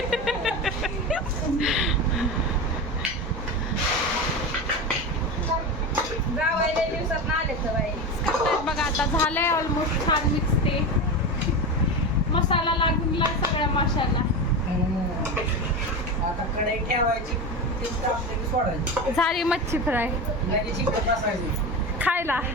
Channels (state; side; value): normal; both; correlation 0.22